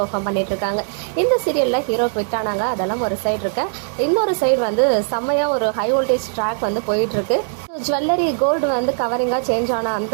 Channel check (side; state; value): left; silent; digital silence